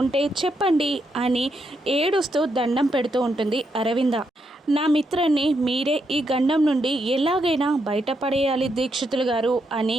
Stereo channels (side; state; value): both; normal; correlation 0.80